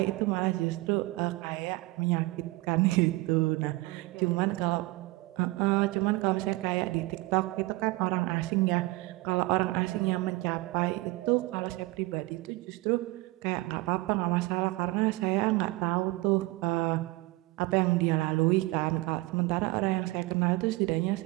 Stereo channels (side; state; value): left; quieter; 21.4 dB